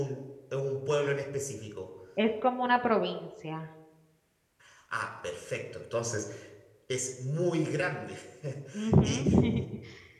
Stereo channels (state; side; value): identical; both; correlation 1.00